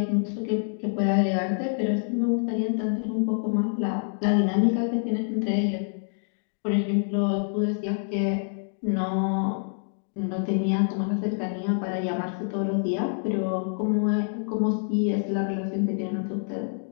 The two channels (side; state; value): right; silent; digital silence